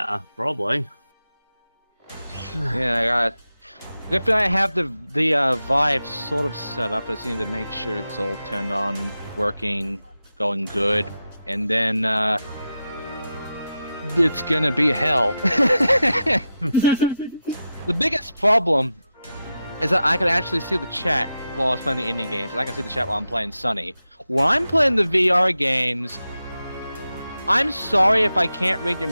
probably. Yeah, I got. Good thing I have the Vive sort of set up. I just need to make sure it's all turned on, working, going good, and then it's gonna be hell. The biggest problem is that I can actually see the chat while I was playing the indie games, and I can see the chat while I'm playing Sunny. When I'm playing the VR games, I'm sorry if I can't read your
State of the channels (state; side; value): inverted; both; correlation -0.90